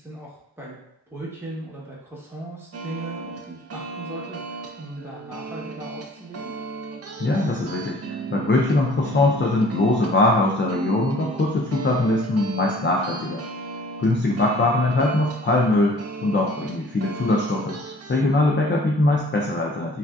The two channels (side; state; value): both; normal; correlation 0.52